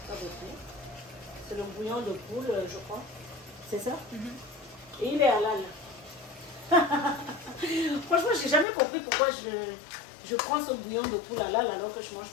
Pas beaucoup. C'est le bouillon de poule, je crois. C'est ça? Et il est halal. Franchement, j'ai jamais compris pourquoi je prends ce bouillon de poule halal alors que je ne mange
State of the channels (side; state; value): right; drops out; at 8.7 s